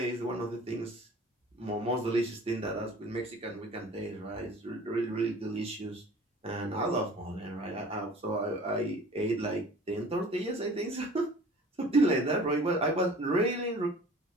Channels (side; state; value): both; normal; correlation 0.46